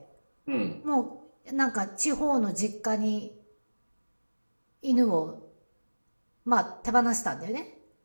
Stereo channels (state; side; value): inverted; both; correlation -1.00